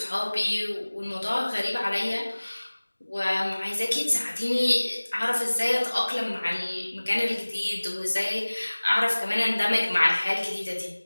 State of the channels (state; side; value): inverted; both; correlation -1.00